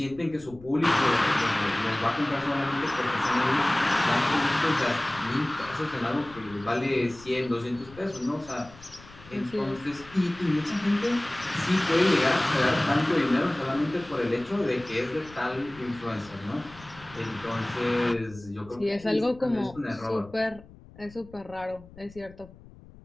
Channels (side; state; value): left; noise; rumble, 21 dB below the sound